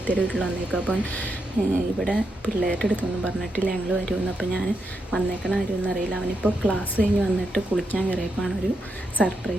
വീട്ടിൽ വന്നേക്കും. അപ്പം ഇവിടെ പിള്ളേരുടെ അടുത്തൊന്നും പറഞ്ഞിട്ടില്ല ഞങ്ങൾ വരുമെന്ന്. അപ്പം ഞാൻ വന്നേക്കണ കാര്യമൊന്നും അറിയില്ല. അവനിപ്പോൾ ക്ലാസ് കഴിഞ്ഞ് വന്നിട്ട് കുളിക്കാൻ കയറിയപ്പോൾ ഒരു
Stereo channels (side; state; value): both; normal; correlation 0.83